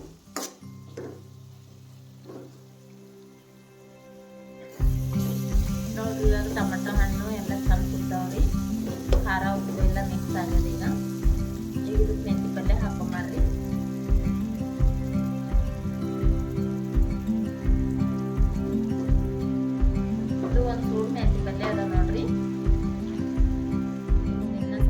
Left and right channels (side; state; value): both; identical; correlation 1.00